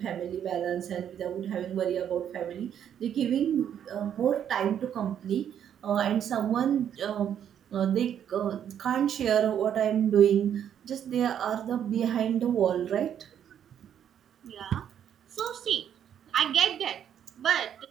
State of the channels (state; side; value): quieter; left; 9.3 dB